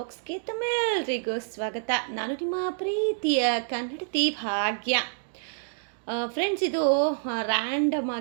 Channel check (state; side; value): silent; left; digital silence